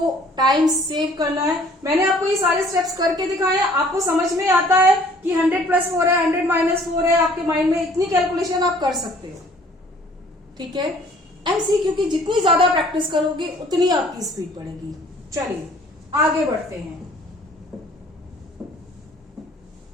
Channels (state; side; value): normal; both; correlation 0.56